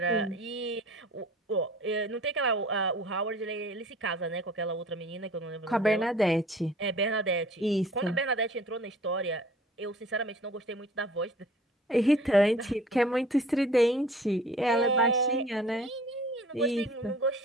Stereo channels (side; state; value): both; normal; correlation 0.49